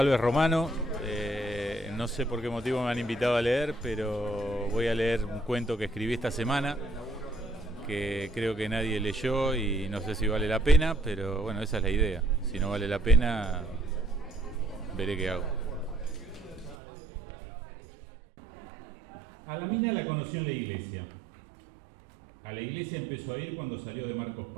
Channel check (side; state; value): left; drops out; at 16.8 s